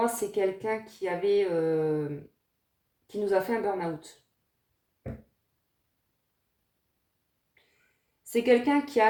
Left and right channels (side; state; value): both; identical; correlation 1.00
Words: c'est quelqu'un qui nous a fait un burn-out. C'est quelqu'un qui a